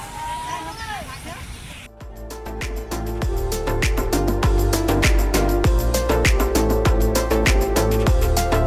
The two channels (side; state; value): both; identical; correlation 1.00